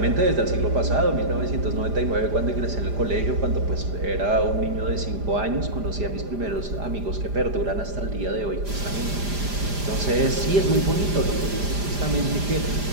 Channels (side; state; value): left; late; 5.0 ms